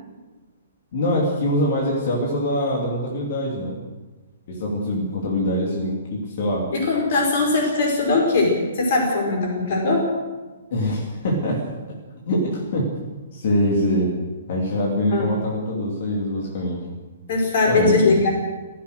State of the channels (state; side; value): inverted; both; correlation -0.45